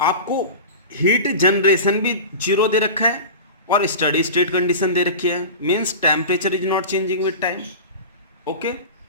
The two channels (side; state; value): both; inverted; correlation -0.31